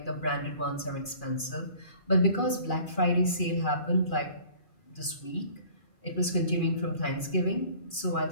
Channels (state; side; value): late; right; 2.4 ms